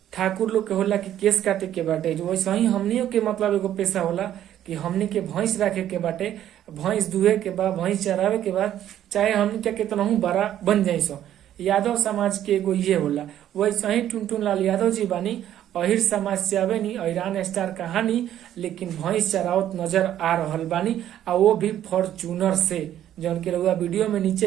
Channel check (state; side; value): quieter; left; 11.5 dB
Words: ठाकुर लोग के होला कि केस काटे के बाटे, जो वैसे ही हमनियों के मतलब एगो पेशा होला कि हमनी के भैंस राखे के बाटे, भैंस दुहे के बाद, भैंस चरावे के बाद, चाहे हमनी के कितना बड़ा बन जाए सो। यादव समाज के एगो ये होला। वैसे ही टुनटुन लाल यादव जी बानी, अहिर समाज से आवे नी, अहिरान स्टार कहानी, लेकिन भैंस चरावत नजर आ रहल बानी, आ वो भी फॉर्चूनर से, जौन के रउआ वीडियो में नीचे